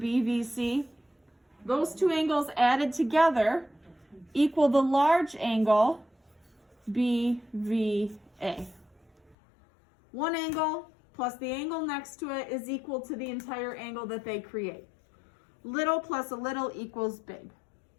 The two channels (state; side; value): drops out; right; at 9.3 s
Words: Those two angles added together equal the large angle BVA. One angle plus the angle next to it is equal to the entire angle that they create. Little plus a little equals big.